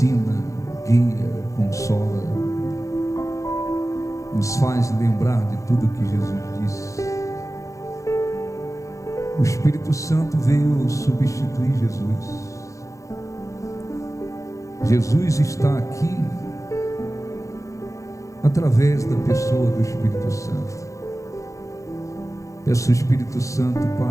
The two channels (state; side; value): late; right; 0.15 ms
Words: guia, consola, nos faz lembrar de tudo que Jesus disse. O Espírito Santo veio substituir Jesus. Jesus está aqui através da pessoa do Espírito Santo. Peço ao Espírito Santo